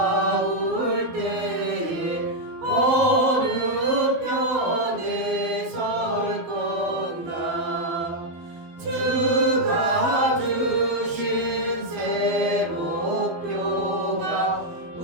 때에 어느 편에 설 건가 주가 주신 새 목표가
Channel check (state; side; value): late; left; 12 ms